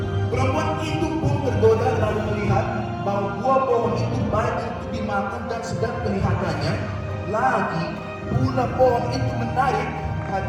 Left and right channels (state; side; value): identical; both; correlation 1.00